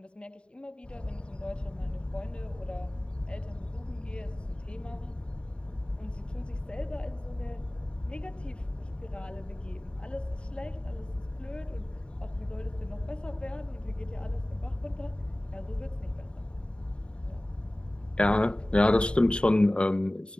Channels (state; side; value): late; right; 0.053 ms